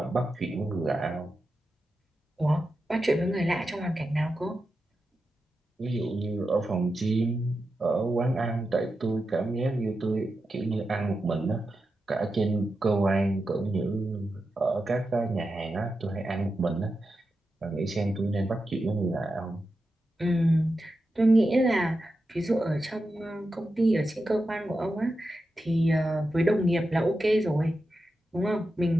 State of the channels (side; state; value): both; normal; correlation 0.90